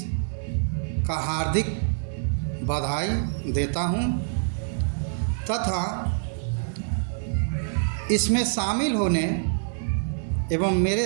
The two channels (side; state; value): left; silent; digital silence